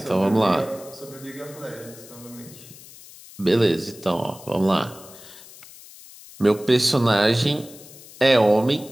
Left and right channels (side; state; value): left; noise; hiss, 19 dB below the sound